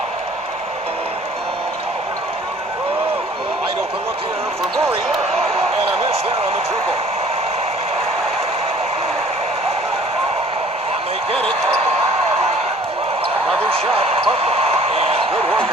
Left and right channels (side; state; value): both; normal; correlation 0.54